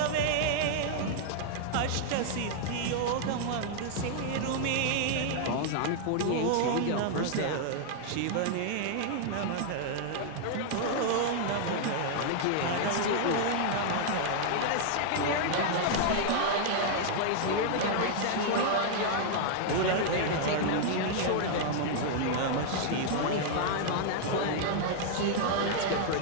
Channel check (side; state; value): both; different; correlation -0.01